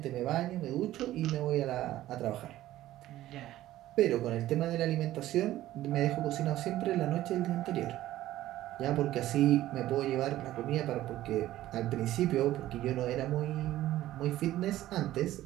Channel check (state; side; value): quieter; left; 14.5 dB